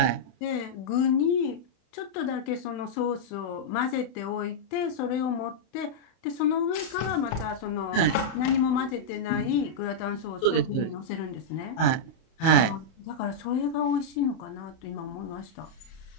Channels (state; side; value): late; right; 31 ms